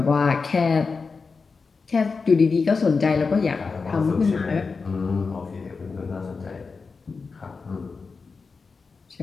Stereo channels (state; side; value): quieter; right; 4.7 dB